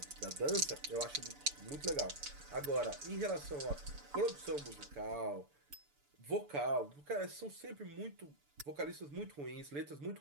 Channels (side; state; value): left; late; 6.9 ms